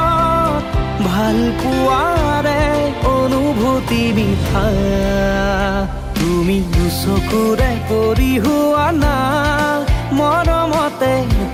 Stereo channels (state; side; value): identical; both; correlation 1.00